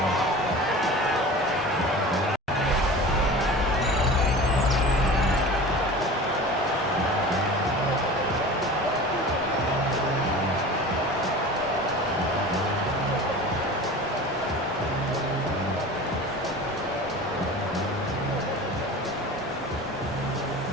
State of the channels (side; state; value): both; normal; correlation 0.37